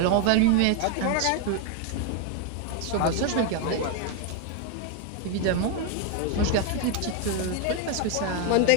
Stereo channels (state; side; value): different; both; correlation 0.01